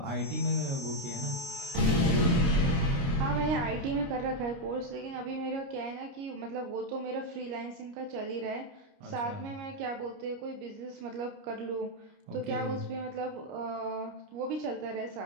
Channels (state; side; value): late; left; 29 ms